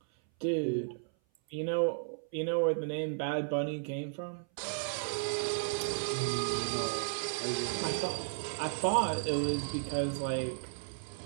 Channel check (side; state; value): left; silent; 55 dB below the other